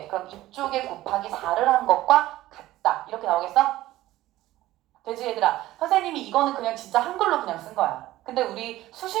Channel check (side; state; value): left; quieter; 15.9 dB